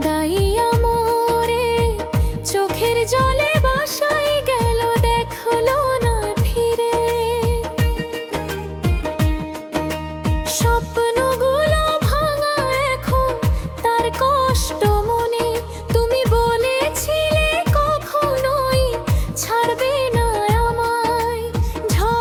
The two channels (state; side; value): identical; both; correlation 1.00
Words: জলে বাসাই গেল, দেখলো না ফিরে। স্বপ্নগুলো ভাঙা এখন তার কষ্ট মনে। তুমি বলেছিলে কখনোই ছাড়বে না আমায়,